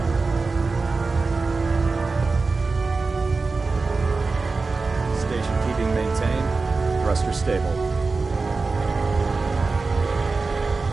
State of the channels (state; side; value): quieter; left; 4.0 dB